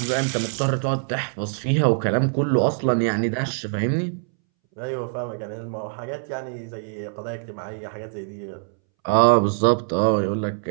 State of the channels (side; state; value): left; silent; 63 dB below the other